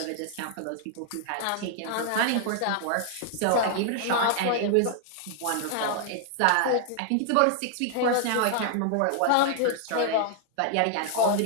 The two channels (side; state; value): both; different; correlation 0.00